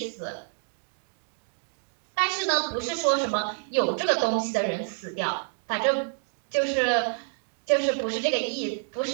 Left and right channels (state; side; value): silent; left; 59 dB below the other